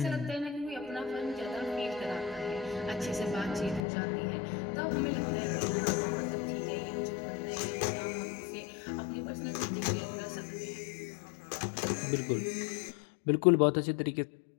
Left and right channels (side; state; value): right; drops out; at 3.8 s